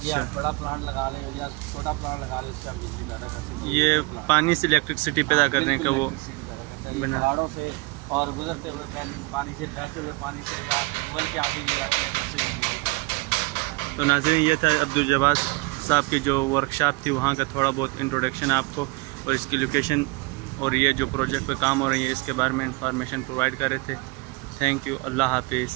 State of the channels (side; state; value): left; quieter; 26.2 dB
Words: ये बड़ा प्लांट लगा ले या छोटा प्लांट लगा ले, उससे हम बिजली पैदा कर सकते हैं। ये पानी से इलेक्ट्रिसिटी पैदा करने का वो पहाड़ों से और गुजरते हुए पानी से, बहते हुए पानी से या ट्यूबवेल के आगे ये रख लें, उससे बिजली पैदा। तो नाज़रीन, ये था अब्दुल जब्बार साहब की जो वर्कशॉप थी वहाँ का थोड़ा बहुत इंट्रोडक्शन आपको, और इसकी लोकेशन और ये जो प्रोजेक्ट पे काम हो रही है इसके बारे में इंफॉर्मेशन प्रोवाइड कर रहे थे। Thank you. अल्लाह हाफिज़।